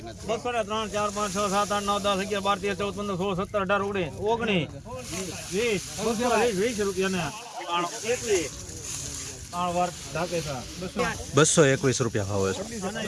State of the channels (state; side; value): identical; both; correlation 1.00